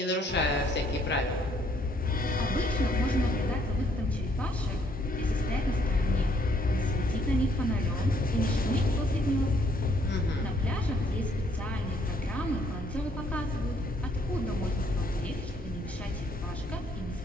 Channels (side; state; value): both; normal; correlation 0.67